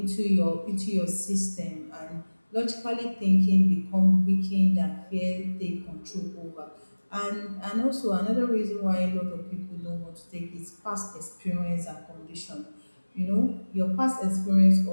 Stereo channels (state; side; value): inverted; both; correlation -1.00